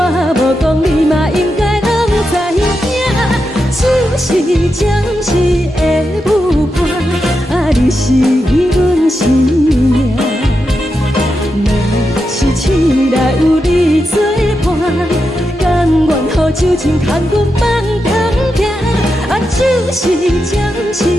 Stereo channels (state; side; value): normal; both; correlation 0.87